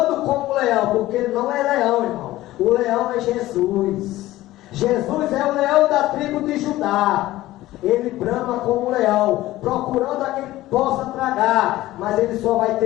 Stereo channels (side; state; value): right; quieter; 16.3 dB